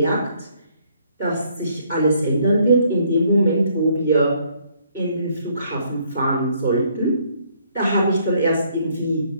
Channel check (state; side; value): inverted; both; correlation -0.66